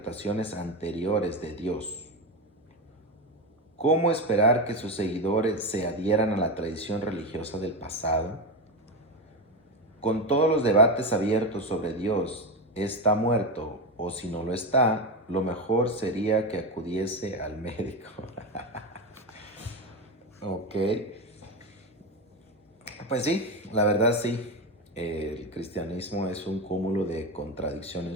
anteriores de Dios. ¿Cómo esperar que sus seguidores se adhieran a la tradición religiosa del pasado? Con todos los debates abiertos sobre Dios, ¿está muerto o si no lo está? Lo mejor sería que acudiese al médico. Ok. Pues sí, la verdad sí. El cristianismo es un cúmulo de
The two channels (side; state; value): both; normal; correlation 0.15